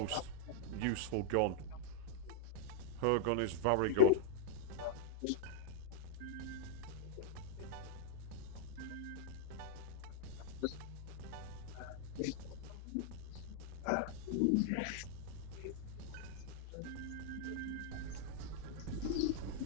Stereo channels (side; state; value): both; different; correlation -0.01